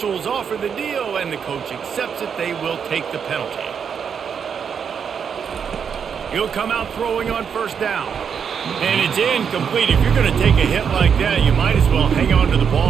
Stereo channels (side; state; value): left; quieter; 7.1 dB